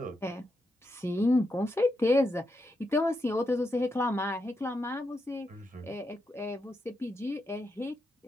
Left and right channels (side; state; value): both; normal; correlation 0.84